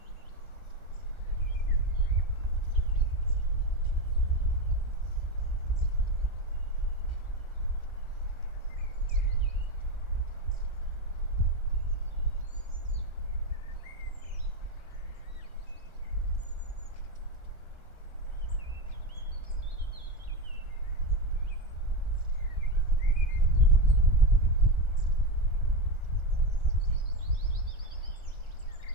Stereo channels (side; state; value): right; late; 1.4 ms